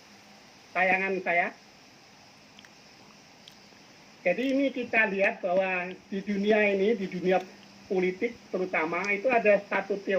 tayangan saya. Jadi ini kita lihat bahwa di dunia ini, di dunia politik terutama, itu ada satu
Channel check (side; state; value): both; identical; correlation 1.00